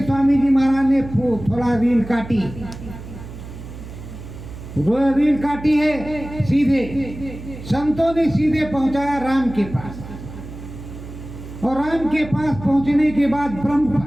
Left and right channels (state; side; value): noise; right; hum, 13 dB below the sound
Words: स्वामी जी महाराज ने थोड़ा रील काटी, रील काटी है सीधे। संतों ने सीधे पहुंचाया राम के पास, और राम के पास पहुंचने के बाद